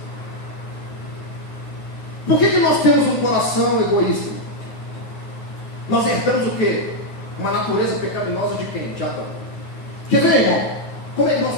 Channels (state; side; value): late; right; 9.5 ms